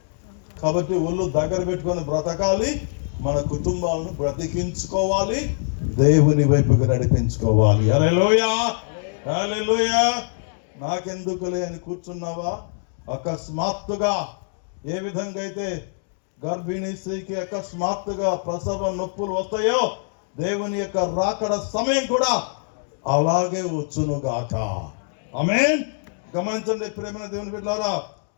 కాబట్టి ఒళ్ళు దగ్గర పెట్టుకొని బ్రతకాలి. మన కుటుంబాలను బ్రతికించుకోవాలి, దేవుని వైపుకి నడిపించుకోవాలి. హల్లెలూయా. నాకెందుకులే అని కూర్చున్నావా? అకస్మాత్తుగా ఏ విధంగా అయితే గర్భిణీ స్త్రీకి అకస్మాత్తుగా ప్రసవ నొప్పులు వస్తాయో, దేవుని యొక్క రాకడ సమయం కూడా అలాగే వచ్చునుగాక. ఆమేన్. గమనించండి ప్రేమ దేవుని బిడ్డలారా,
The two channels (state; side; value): silent; right; digital silence